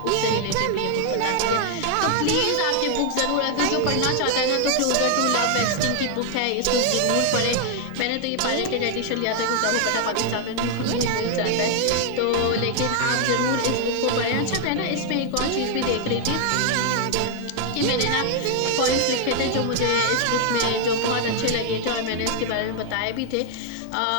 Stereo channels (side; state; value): both; different; correlation 0.00